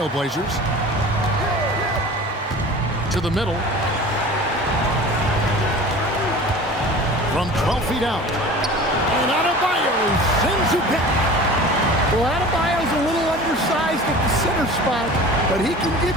To the middle. From 12 feet out. And Adebayo sends it back. Well, Adebayo's a little undersized at the center spot, but he can give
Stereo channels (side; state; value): both; normal; correlation 0.39